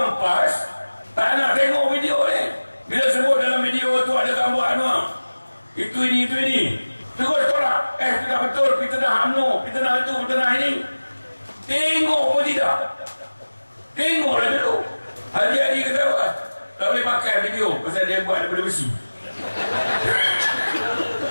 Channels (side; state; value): both; inverted; correlation -1.00